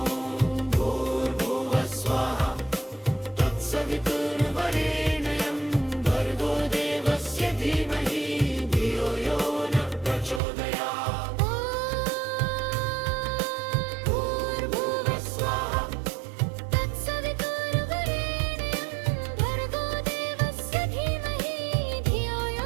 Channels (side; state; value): left; drops out; at 10.4 s